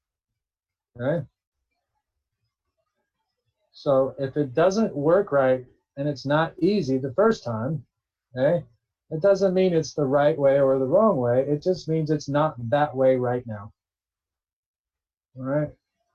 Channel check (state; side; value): identical; both; correlation 1.00